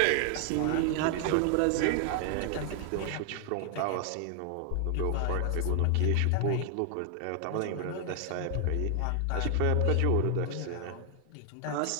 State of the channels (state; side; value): different; both; correlation 0.00